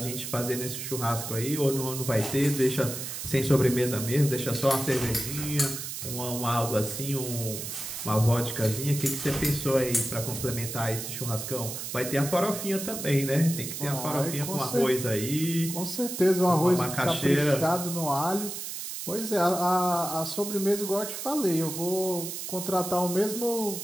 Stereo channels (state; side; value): noise; right; hiss, 7 dB below the sound